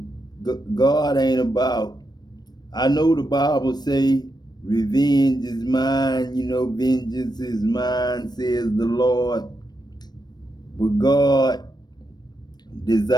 God ain't about, I know the Bible say, revenge is mine, you know, vengeance is mine, says the Lord. But God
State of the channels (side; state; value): right; late; 0.20 ms